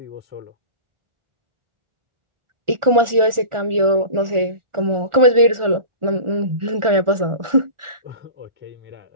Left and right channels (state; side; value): late; left; 1.4 ms